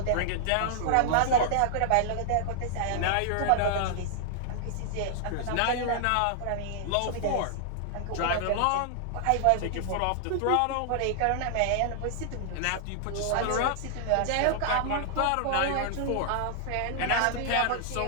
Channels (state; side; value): different; both; correlation -0.01